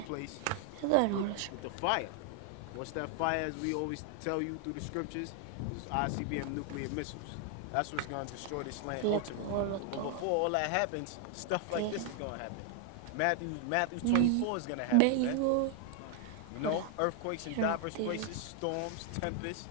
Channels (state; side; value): different; both; correlation 0.00